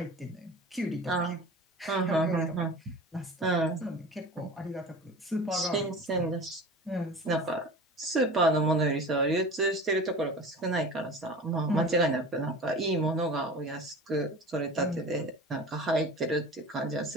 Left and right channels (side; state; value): both; normal; correlation 0.36